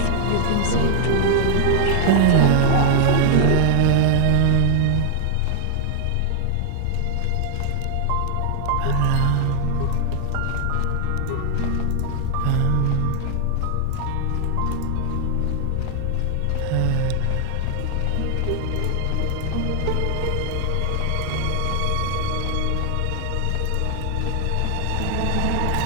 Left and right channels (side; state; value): both; different; correlation 0.00